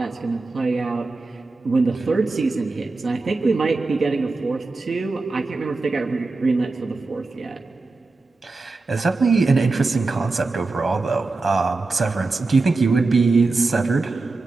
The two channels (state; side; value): quieter; left; 3.6 dB